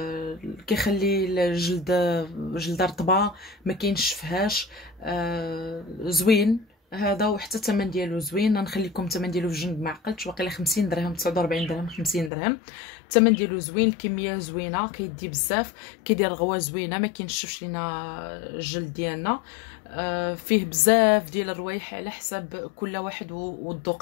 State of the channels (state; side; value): drops out; right; at 12.3 s